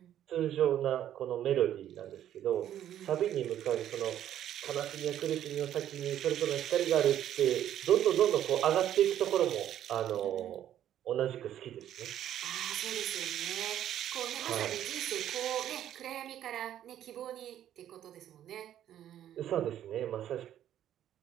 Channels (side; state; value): left; quieter; 11.2 dB